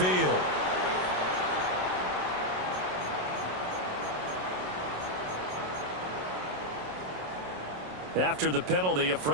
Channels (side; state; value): left; late; 27 ms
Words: After the penalty, a